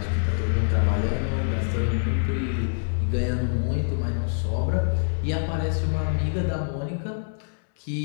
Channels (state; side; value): silent; right; 59 dB below the other